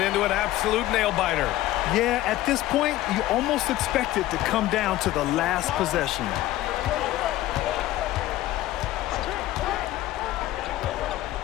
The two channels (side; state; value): right; quieter; 15.4 dB